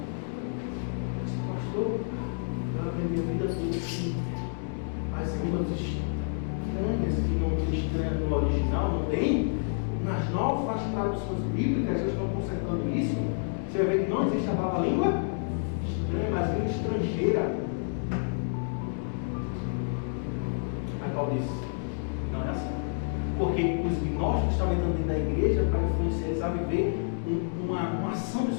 aprendi a vida toda assim. As línguas estranhas, que não tem estranha no original, não tem. Nas novas traduções bíblicas, eles estão consertando isso. Você vai ver que não existe a palavra língua estranha, mas língua estrangeira. Aí Paulo disse, não é assim. Porque os gnósticos estavam entrando dentro da igreja para influenciar eles a viver uma ação do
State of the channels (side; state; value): right; silent; digital silence